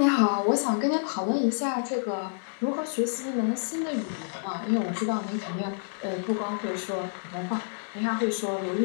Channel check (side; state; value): right; silent; 59 dB below the other